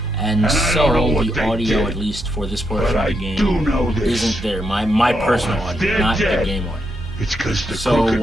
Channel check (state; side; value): normal; both; correlation 0.81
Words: and so the audio, at least for this portion of the game, isn't there. My personal audio, not the game audio. So